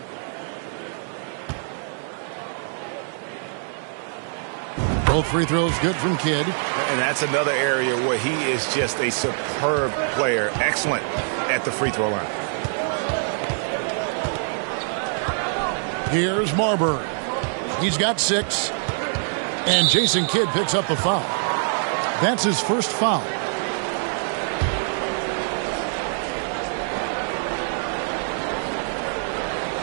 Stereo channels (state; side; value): silent; left; digital silence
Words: Both free throws good from Kidd. And that's another area where he is just a superb player. Excellent at the free throw line. Here's Marbury. He's got 6. And Jason Kidd picks up the foul. That's his first foul.